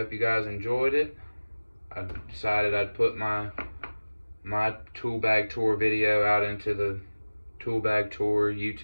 you guys enjoyed it. I decided I'd put my tool bag tour video out into the tool bag tour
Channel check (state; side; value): inverted; both; correlation -1.00